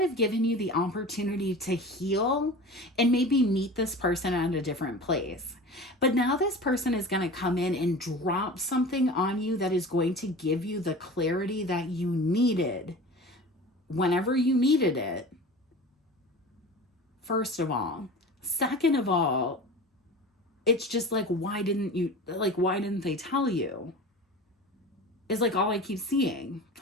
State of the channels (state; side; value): normal; both; correlation 0.36